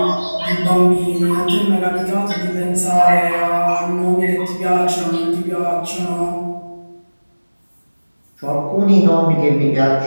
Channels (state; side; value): inverted; both; correlation -1.00